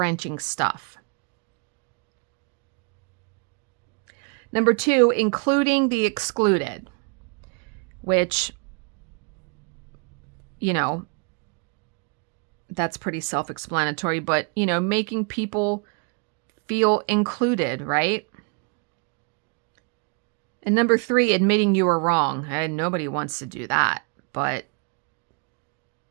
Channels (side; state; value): left; quieter; 36.6 dB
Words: stuff. Number 2, including the excluded, which, you know, that's pretty self-explanatory, but, you know, making people feel included, right? And number 3, admitting you were wrong. And nobody wants to do that, but